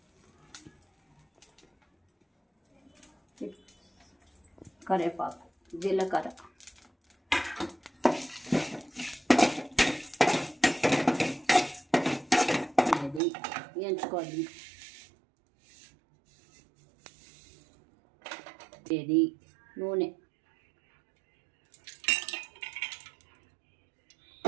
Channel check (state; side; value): drops out; left; at 13.2 s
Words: కరివేపాకు, జీలకర్ర, ఇది వేయించుకోవాలి. ఇది నూనె,